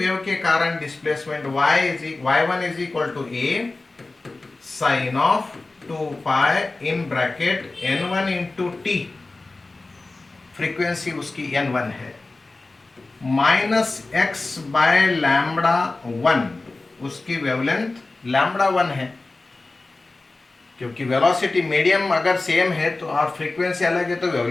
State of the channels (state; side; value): quieter; right; 3.3 dB